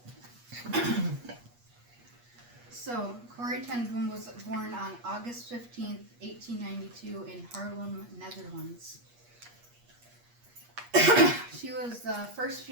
so Corrie ten Boom was born on August 15th, 1892 in Haarlem, Netherlands. She was the first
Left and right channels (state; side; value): late; left; 8.4 ms